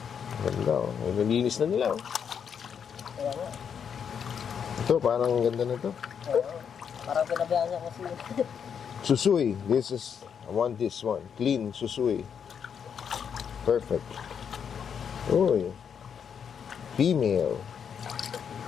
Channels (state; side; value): quieter; right; 7.4 dB